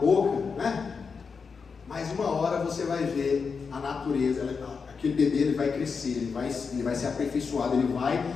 né? Mas uma hora você vai ver a natureza, aquele bebê ele vai crescer, ele vai ser aperfeiçoado, ele vai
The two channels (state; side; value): quieter; right; 5.4 dB